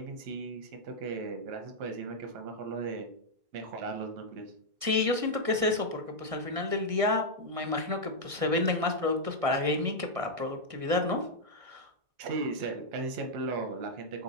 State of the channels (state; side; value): late; left; 1.6 ms